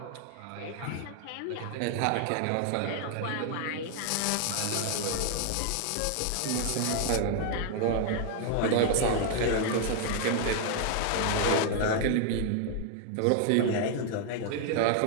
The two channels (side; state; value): both; different; correlation 0.00